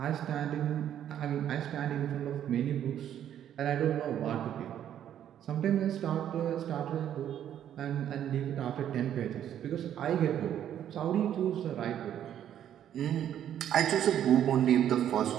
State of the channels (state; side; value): quieter; left; 10.4 dB